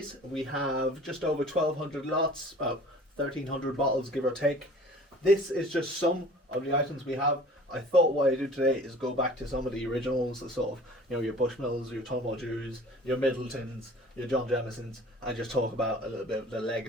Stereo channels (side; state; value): both; normal; correlation 0.46